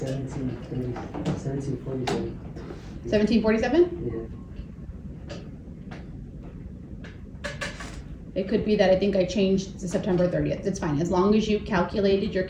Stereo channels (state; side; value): identical; both; correlation 1.00